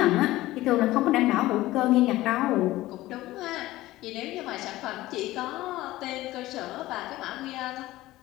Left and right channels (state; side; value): quieter; right; 17.0 dB